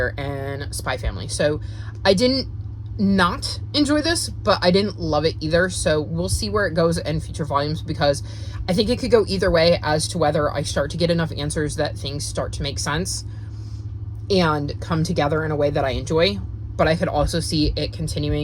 and Spy Family. So I didn't not enjoy this, but I didn't love it either. So we'll see where it goes in future volumes, because I think it could go either way as to whether I start to get enough answers that things start to make sense and come together in a way that I enjoy. But I could also see it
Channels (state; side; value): identical; both; correlation 1.00